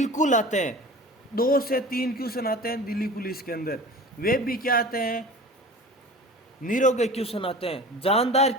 आते हैं, 2 से 3 क्वेश्चन आते हैं दिल्ली पुलिस के अंदर। वे भी क्या आते हैं? निरोगे क्वेश्चन आते हैं, जानदार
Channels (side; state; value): both; normal; correlation 0.38